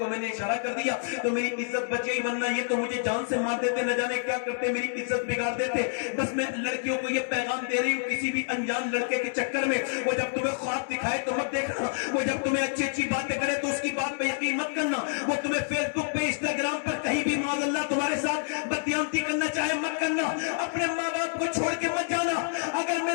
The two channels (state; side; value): silent; right; digital silence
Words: मैंने इशारा कर दिया तो मेरी इज्जत बच गई, वरना ये तो मुझे जान से मार देते, न जाने क्या करते, मेरी इज्जत बिगाड़ देते। बस मैं लड़कियों को ये पैगाम दे रही हूँ, किसी भी अनजान लड़के के चक्कर में वो जब तुम्हें ख्वाब दिखाए तो मत देखना, वो जब तुम्हें अच्छी अच्छी बातें करे तो उसकी बात पे यकीन मत करना, वो तुम्हें फेसबुक पे इंस्टाग्राम पर कहीं भी माज़अल्लाह तुम्हारे साथ बदयानती करना चाहे मत करना। अपने माँ बाप को छोड़ के मत जाना। अगर